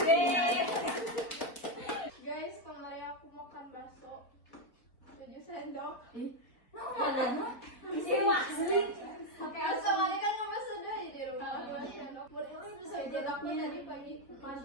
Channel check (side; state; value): right; late; 4.0 ms